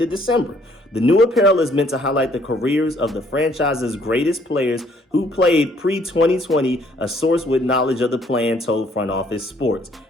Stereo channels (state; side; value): normal; both; correlation 0.64